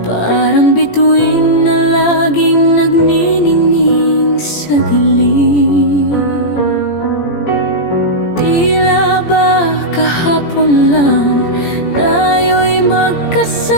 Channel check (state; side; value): late; right; 17 ms